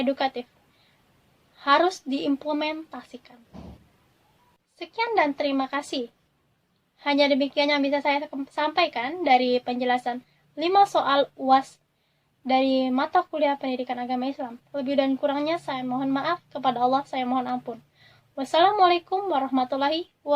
harus diimplementasikan. Sekian dan terima kasih. Hanya demikian yang bisa saya sampaikan dari penjelasan 5 soal UAS dari mata kuliah pendidikan agama Islam. Lebih dan kurangnya saya mohon maaf, kepada Allah saya mohon ampun. Wassalamualaikum warahmatullahi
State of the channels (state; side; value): identical; both; correlation 1.00